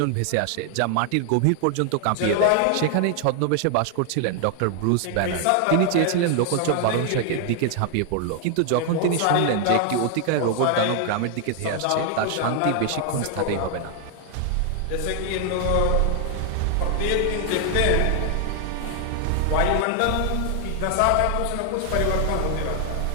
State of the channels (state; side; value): different; both; correlation 0.00